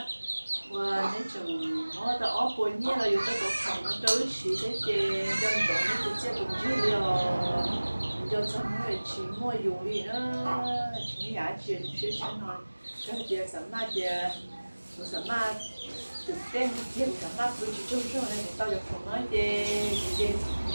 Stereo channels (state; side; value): inverted; both; correlation -1.00